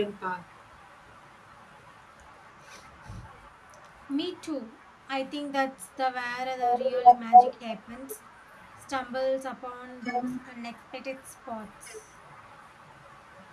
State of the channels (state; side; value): identical; both; correlation 1.00